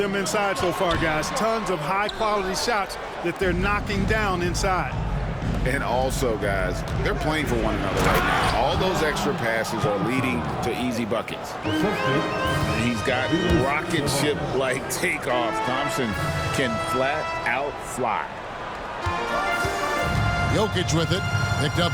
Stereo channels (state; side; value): identical; both; correlation 1.00